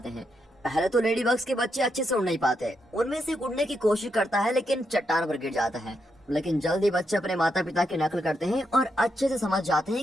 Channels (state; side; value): normal; both; correlation 0.81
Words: हैं। पहले तो लेडी बग्स के बच्चे अच्छे से उड़ नहीं पाते। उनमें से उड़ने की कोशिश करता है लेकिन चट्टान पर गिर जाता है। लेकिन जल्दी बच्चे अपने माता पिता की नकल करते हैं और अच्छे से समझ जाते